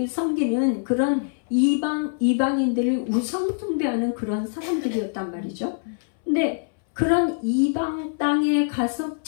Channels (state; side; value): silent; right; 63 dB below the other